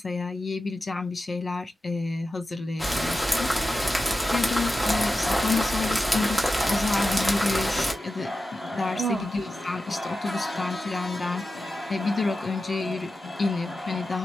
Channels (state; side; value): normal; both; correlation 0.92